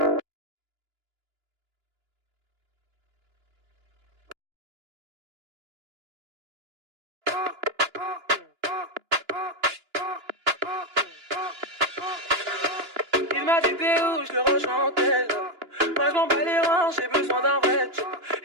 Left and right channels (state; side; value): late; left; 2.9 ms